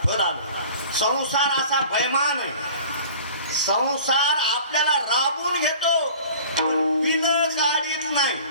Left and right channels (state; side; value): inverted; both; correlation -0.45